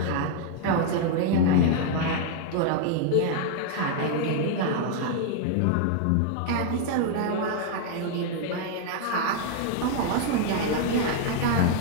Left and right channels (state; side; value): different; both; correlation 0.00